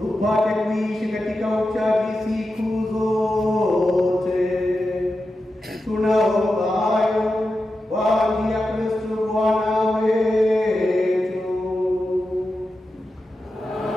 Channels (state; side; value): normal; both; correlation 0.91